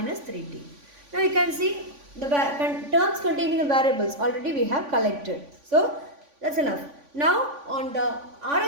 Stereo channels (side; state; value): left; late; 3.5 ms